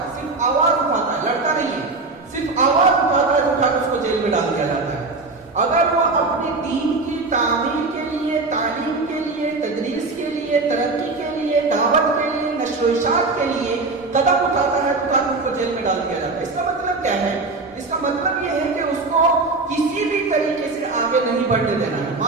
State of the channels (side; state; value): left; quieter; 3.6 dB